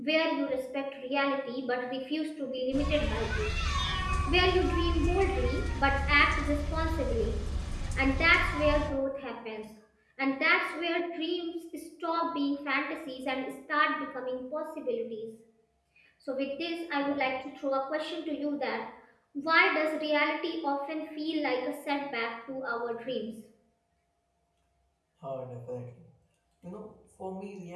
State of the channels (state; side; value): identical; both; correlation 1.00